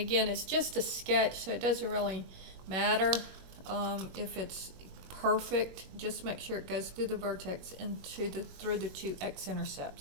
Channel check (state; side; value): late; left; 21 ms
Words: it's just a sketch, so it doesn't really matter if it's perfect. Just make sure it goes through the vertex and through the 2